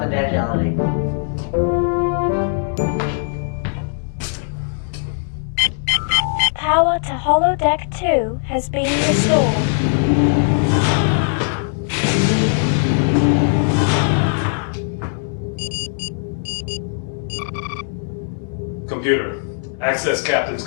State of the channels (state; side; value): silent; right; digital silence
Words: Power to holodeck 2 has been restored. Computer, access Captain's